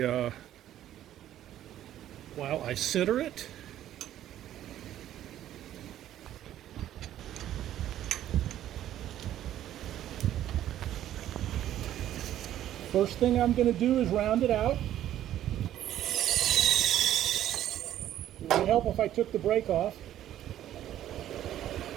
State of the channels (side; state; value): left; quieter; 12.2 dB